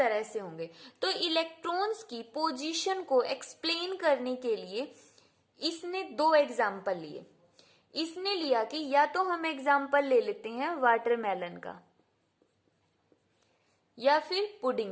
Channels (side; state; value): both; identical; correlation 1.00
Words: से होंगे। तो इलेक्ट्रॉन्स की पोजीशन को एक्सप्लेन करने के लिए इसने दो एग्जाम्पल लिए। इसने लिया कि या तो हम एग्जाम्पल ले लेते हैं वाटरमेलन का या फिर